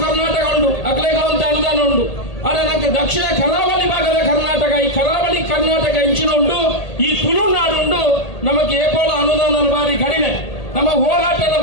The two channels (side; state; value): right; late; 1.8 ms